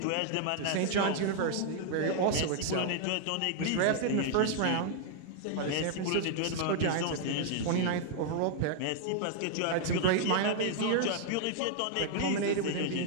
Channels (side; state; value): both; different; correlation 0.00